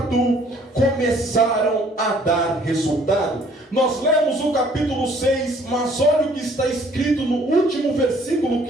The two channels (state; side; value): normal; both; correlation 0.59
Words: começaram a dar resultado. Nós lemos o capítulo 6, mas olha o que está escrito no último versículo